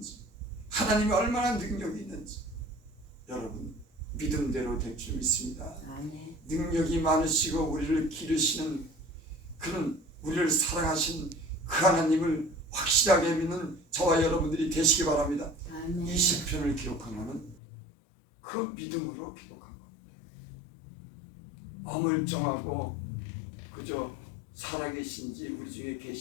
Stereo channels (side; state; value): right; drops out; at 17.6 s